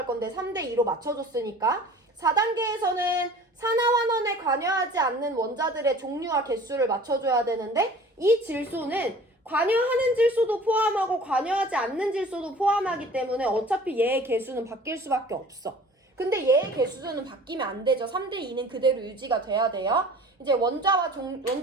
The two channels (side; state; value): both; normal; correlation 0.45